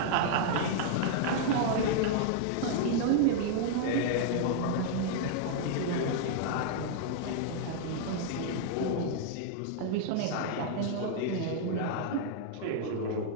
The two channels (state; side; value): different; both; correlation -0.01